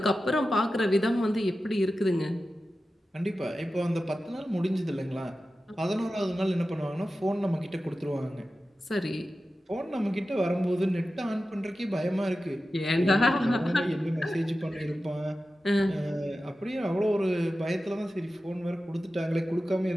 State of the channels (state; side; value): normal; both; correlation 0.93